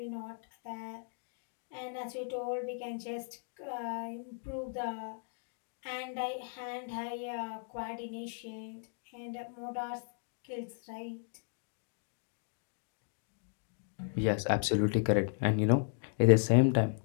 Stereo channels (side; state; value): right; silent; 54 dB below the other